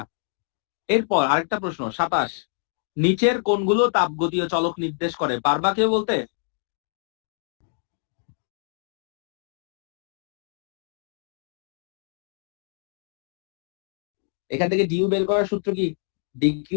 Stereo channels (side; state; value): right; silent; digital silence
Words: এরপর আরেকটা প্রশ্ন 27, নিচের কোনগুলো তাপগতীয় চলক নির্দেশ করে, পারবা কেউ বলতে? এখান থেকে ডিউ বের করার সূত্র কি?